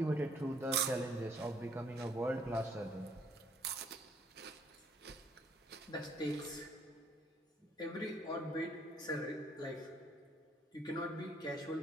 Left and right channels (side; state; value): both; normal; correlation 0.64